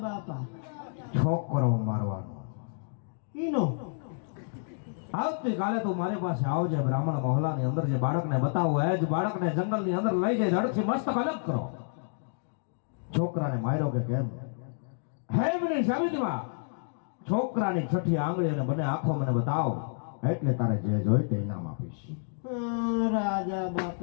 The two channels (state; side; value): silent; right; digital silence